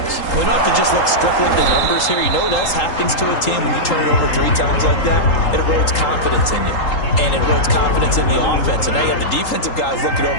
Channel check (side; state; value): right; late; 3.8 ms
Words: We don't have to just look strictly at the numbers here. You know what else happens to a team when you turn it over 3 times like that? It erodes confidence in you. And it erodes confidence in the offense. And now you have the defensive guys looking